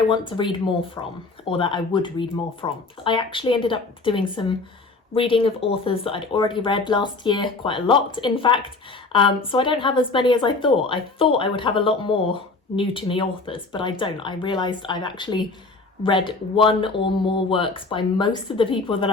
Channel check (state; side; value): quieter; right; 3.7 dB